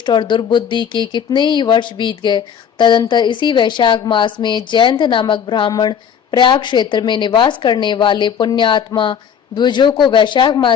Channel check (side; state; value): right; quieter; 8.0 dB